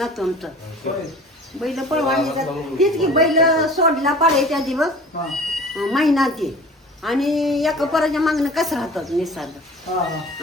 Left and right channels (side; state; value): both; normal; correlation 0.43